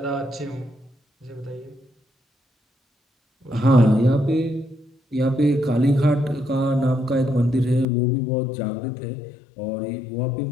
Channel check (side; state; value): right; drops out; at 7.9 s